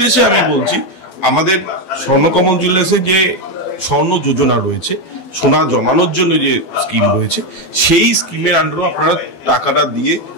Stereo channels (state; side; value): late; right; 12 ms